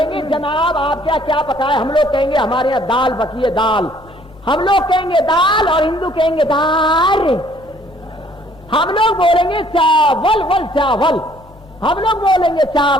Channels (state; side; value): normal; both; correlation 0.60